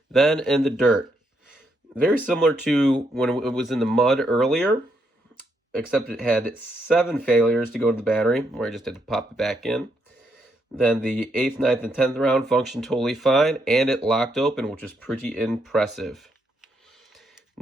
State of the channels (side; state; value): both; normal; correlation 0.77